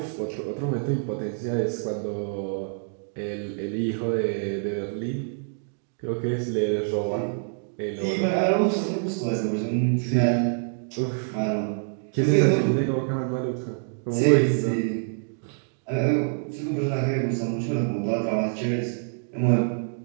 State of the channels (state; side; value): silent; left; digital silence